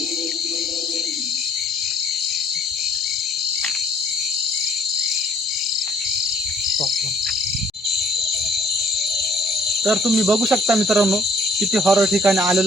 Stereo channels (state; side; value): normal; both; correlation 0.61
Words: तर तुम्ही बघू शकता मित्रांनो किती हॉरर ठिकाणी